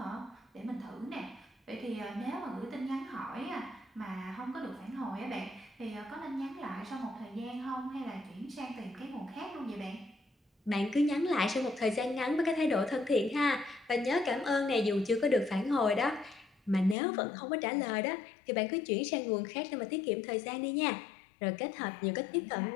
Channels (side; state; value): right; drops out; at 16.9 s